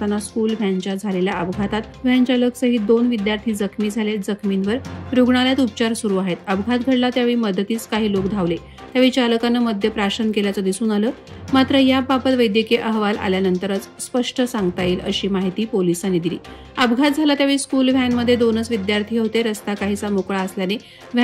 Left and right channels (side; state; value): both; identical; correlation 1.00